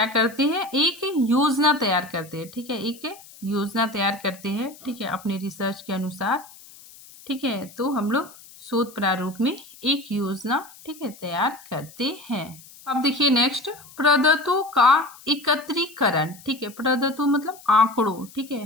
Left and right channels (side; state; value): left; noise; hiss, 21 dB below the sound